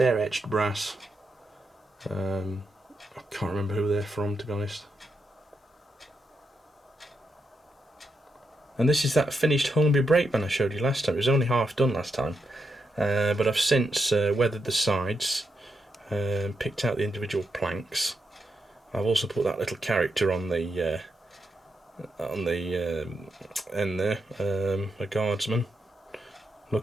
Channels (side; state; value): both; normal; correlation 0.83